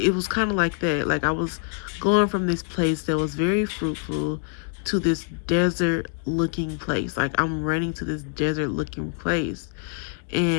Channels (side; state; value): right; silent; 62 dB below the other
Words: was kind of like that. Like I was going from this place that was very fruitful to this desert looking place. Like I'm running to this desert looking place,